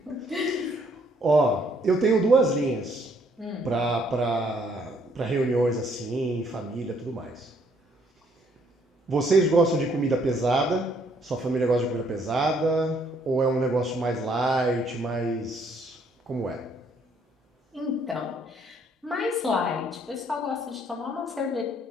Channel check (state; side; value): normal; both; correlation 0.67